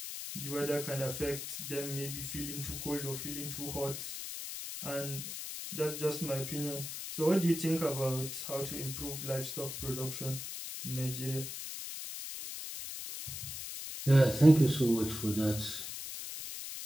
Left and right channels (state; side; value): noise; left; hiss, 7 dB below the sound